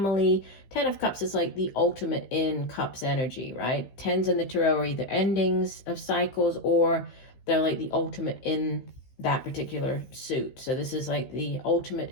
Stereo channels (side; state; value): right; late; 15 ms